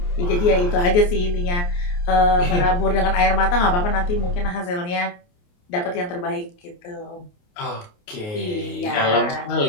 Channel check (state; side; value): late; right; 28 ms